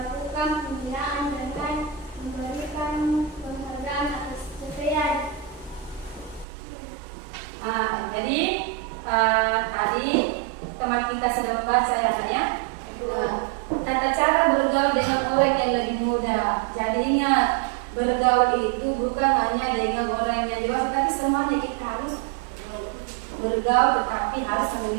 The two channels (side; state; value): left; drops out; at 6.5 s